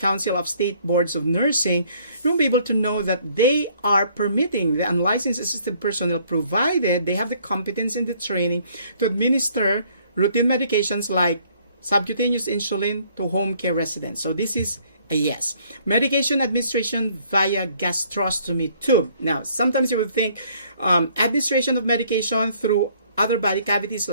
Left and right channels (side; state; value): both; inverted; correlation -0.62